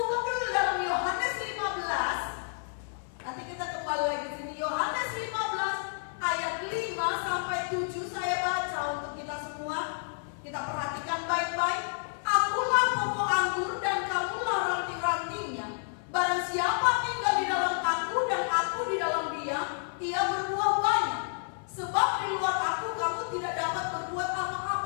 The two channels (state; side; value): silent; right; 58 dB below the other